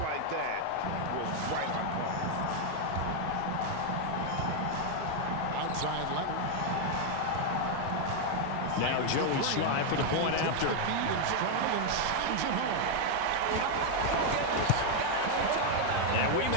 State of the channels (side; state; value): both; different; correlation 0.00